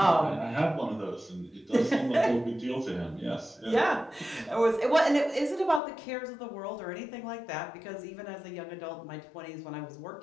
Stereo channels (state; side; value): drops out; right; at 5.8 s